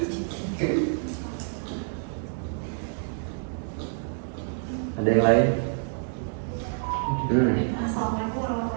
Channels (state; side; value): silent; left; digital silence